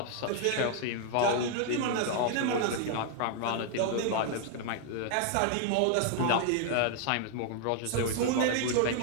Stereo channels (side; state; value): both; different; correlation 0.00